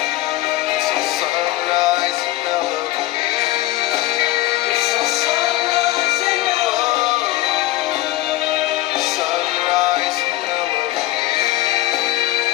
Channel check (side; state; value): right; quieter; 16.8 dB